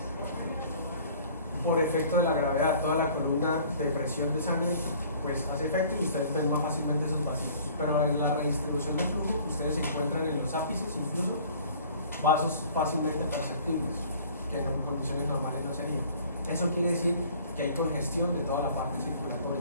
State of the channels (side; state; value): both; inverted; correlation -0.51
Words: Por efecto de la gravedad, toda la columna de presión de sangre pues hace efecto y ustedes ven más fácilmente esos vacíos. Pero en la redistribución del flujo, ustedes encuentran en los ápices incluso vasos fácilmente perceptibles, que en condiciones normales no serían. Eso quiere decir que hay congestión de toda la parte